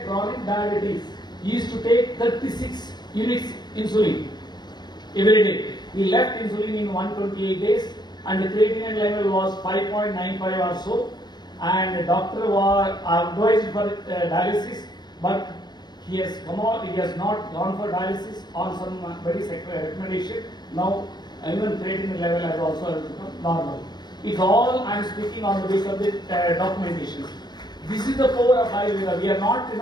chronic diabetes. He used to take 36 units insulin every day. He left insulin in 128 days, and the creatinine level was 5.95 or so. And the doctor was advised for dialysis, but he has come out. He has not gone for dialysis on some very recommendation. Now even creatinine level has also become normal. It's all I am speaking on the basis of the documentation. This is the power of Ayurveda. We are not,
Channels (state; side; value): late; right; 0.21 ms